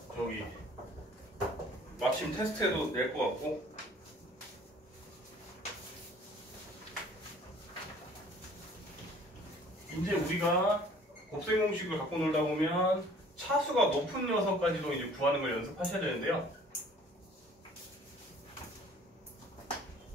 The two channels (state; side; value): normal; both; correlation 0.52